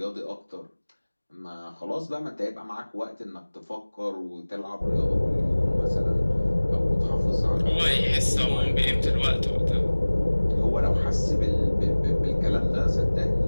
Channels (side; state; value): both; inverted; correlation -1.00